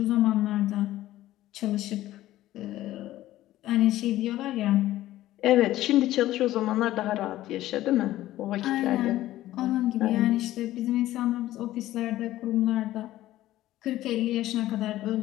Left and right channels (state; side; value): quieter; right; 14.8 dB